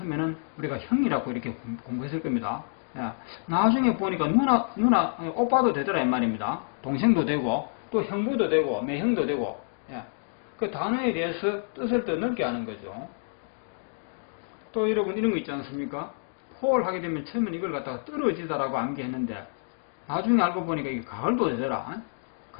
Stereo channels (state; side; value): silent; right; digital silence